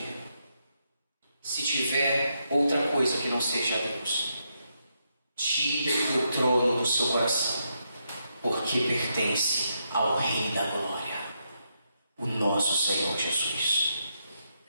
Se tiver outra coisa que não seja Deus, tire do trono do seu coração, porque pertence ao Rei da Glória, o nosso Senhor Jesus.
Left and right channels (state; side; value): inverted; both; correlation -0.81